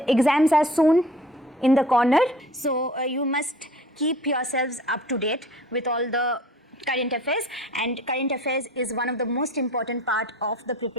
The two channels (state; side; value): normal; both; correlation 0.46